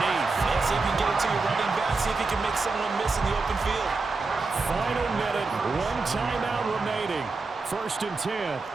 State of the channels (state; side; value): quieter; left; 3.9 dB